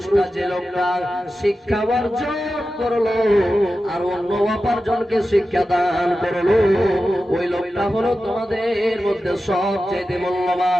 যে লোকটা শিক্ষা অর্জন করলো আর অন্য অপরজনকে শিক্ষা দান করলো, ওই লোকটা হলো তোমাদের মধ্যে সবচাইতে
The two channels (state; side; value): normal; both; correlation 0.93